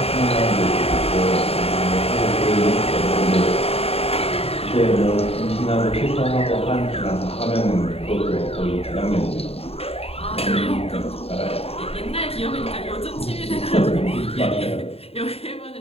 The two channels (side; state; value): right; late; 0.29 ms